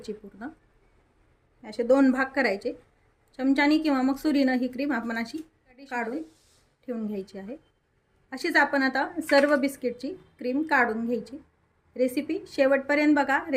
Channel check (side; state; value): both; identical; correlation 1.00